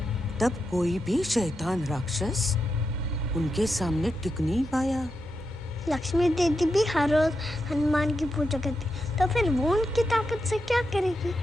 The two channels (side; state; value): both; normal; correlation 0.86